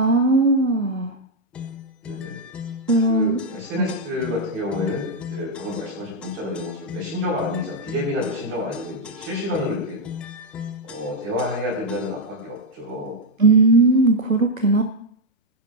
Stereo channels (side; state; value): both; normal; correlation 0.01